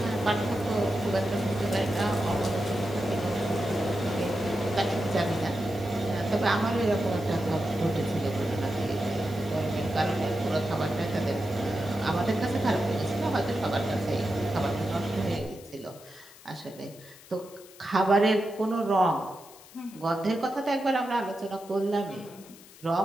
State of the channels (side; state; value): left; noise; hiss, 21 dB below the sound